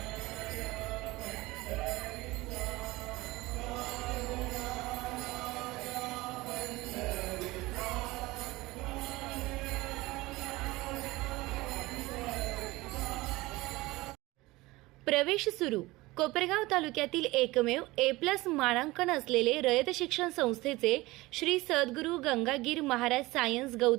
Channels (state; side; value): quieter; left; 20.4 dB